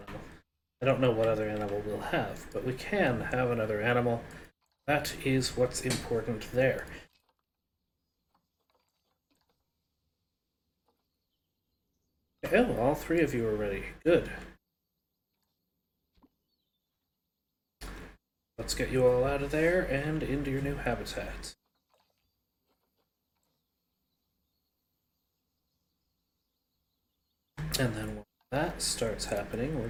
I don't know what other animal we'll have, but we can have another animal. That is what's important there. Oh, all 3 of you are ready. Good. Let's get you all out of there and into your new habitat. And then when that starts happening, we're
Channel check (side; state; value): both; identical; correlation 1.00